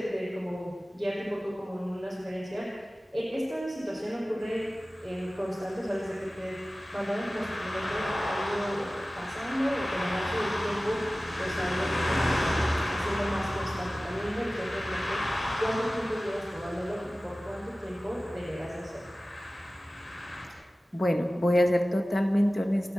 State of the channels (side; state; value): both; normal; correlation 0.97